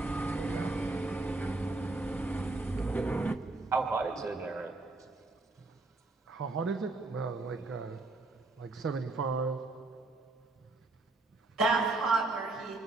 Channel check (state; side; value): quieter; left; 3.2 dB